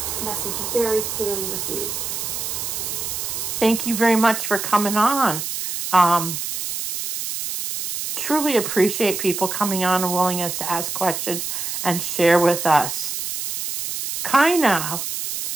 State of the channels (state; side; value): noise; right; hiss, 4 dB below the sound